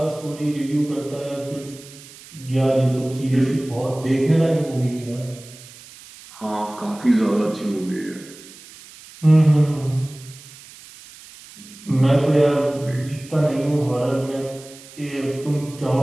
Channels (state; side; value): noise; right; hiss, 19 dB below the sound